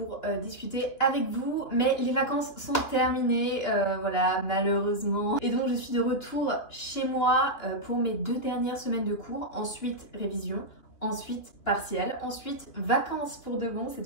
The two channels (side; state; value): right; late; 3.0 ms